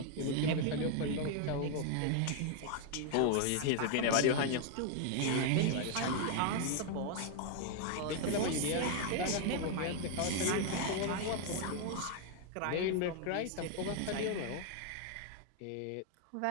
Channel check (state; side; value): different; both; correlation 0.00